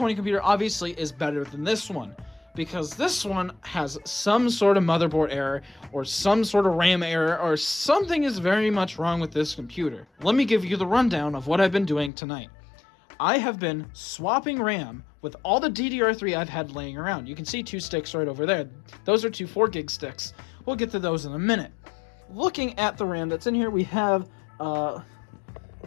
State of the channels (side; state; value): right; drops out; at 12.1 s